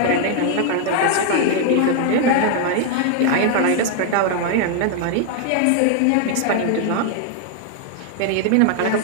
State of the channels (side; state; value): both; different; correlation 0.00